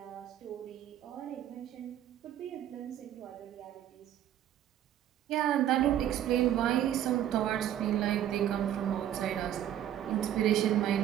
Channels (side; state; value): left; quieter; 11.2 dB